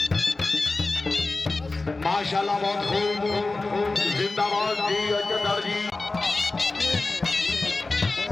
माशाल्लाह बहुत खूब जिंदाबाद जी Ajdar ji.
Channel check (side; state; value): right; quieter; 3.4 dB